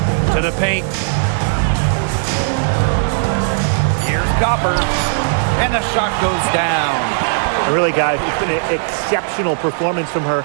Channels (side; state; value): left; silent; digital silence